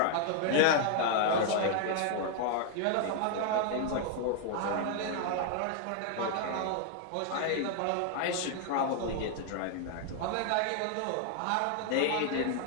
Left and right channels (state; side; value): different; both; correlation 0.00